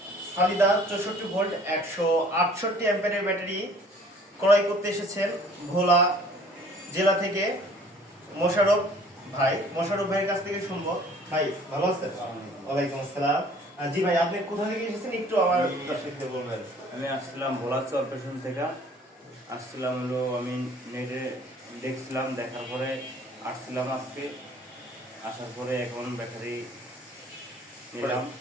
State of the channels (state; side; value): normal; both; correlation 0.53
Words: সালিদা 64 ভোল্ট 168 অ্যাম্পিয়ারের ব্যাটারি ক্রয় করতে এসেছেন ভোলা জেলা থেকে মোশাররফ ভাই। মোশাররফ ভাইয়ের কাছ থেকে শুনবো। ভাই ভালো আছেন? ওয়ালাইকুম আসসালাম। জি ভাই, আপনি কোথা থেকে এসেছেন একটু আমার দর্শকদের বলবেন। আমি আসছিলাম ভোলা চরপেশন থেকে আসছিলাম হলো আমি নেটে দেখছিলাম, দেখার পরে আসছিলাম আজকে, আসার পরে এখন ব্যাটারি নিলাম।